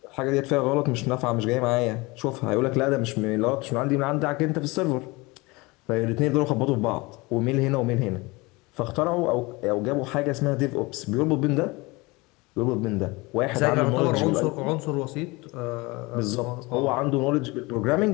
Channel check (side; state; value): right; quieter; 24.1 dB